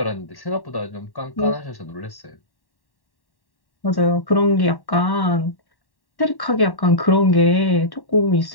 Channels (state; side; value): late; right; 1.1 ms